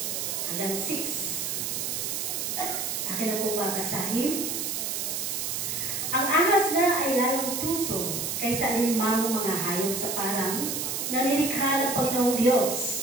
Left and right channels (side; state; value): right; noise; hiss, 2 dB below the sound